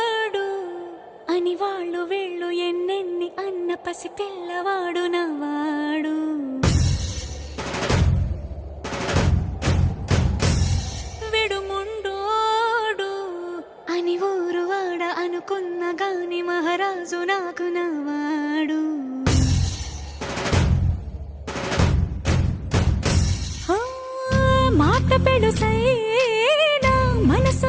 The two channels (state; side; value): identical; both; correlation 1.00